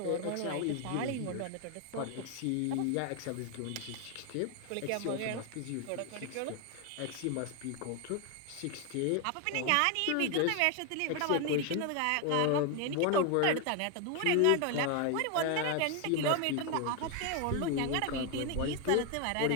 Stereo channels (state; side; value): different; both; correlation 0.01